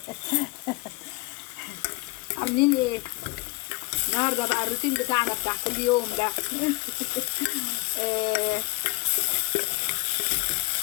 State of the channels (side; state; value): right; quieter; 26.3 dB